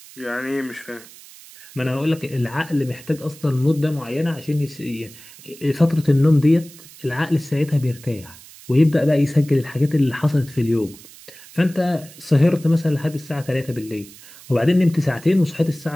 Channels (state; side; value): noise; right; hiss, 20 dB below the sound